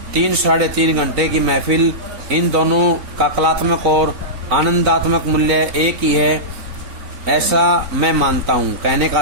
3-3.5 घंटे की महफिल, इन दोनों का कलात्मक और आनंदात्मक मूल्य एक ही है, ऐसा मैं मानता हूँ। कहने का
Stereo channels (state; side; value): late; left; 3.9 ms